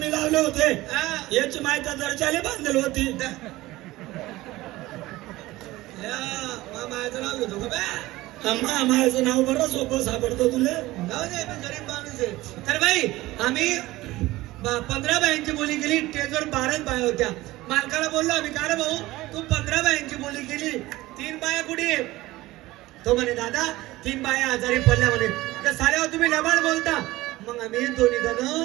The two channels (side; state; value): left; quieter; 18.2 dB